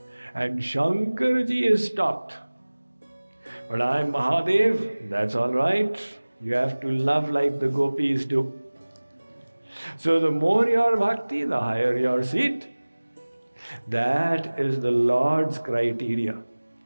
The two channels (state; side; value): inverted; both; correlation -1.00